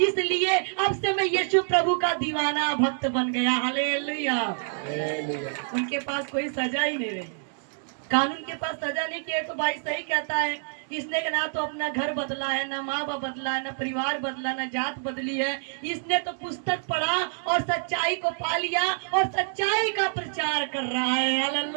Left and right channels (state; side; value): silent; left; digital silence